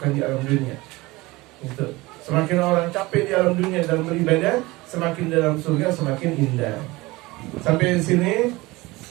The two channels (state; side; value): quieter; left; 21.4 dB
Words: di alam dunia. Itu. Semakin orang capek di alam dunia dalam beribadah, semakin dalam surga semakin indah. Sampai di sini.